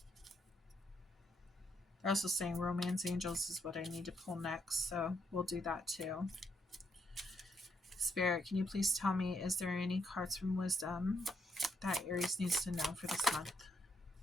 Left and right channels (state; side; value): normal; both; correlation 0.75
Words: They're also saying romance angels is what I need to pull next, so we'll do that too. Spirit, can you please tell me, is there any cards from wisdom that Aries needs to know for this month?